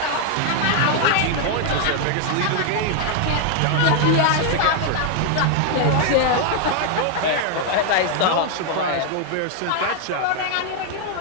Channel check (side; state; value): both; different; correlation 0.00